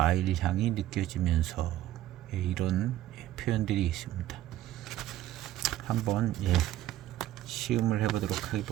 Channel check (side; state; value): left; quieter; 13.8 dB